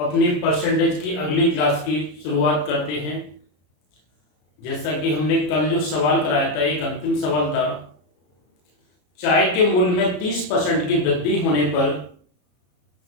परसेंटेज की अगली क्लास की शुरुआत करते हैं। जैसा कि हमने कल जो सवाल कराया था, एक अंतिम सवाल था, चाय के मूल्य में 30% की वृद्धि होने पर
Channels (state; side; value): late; right; 33 ms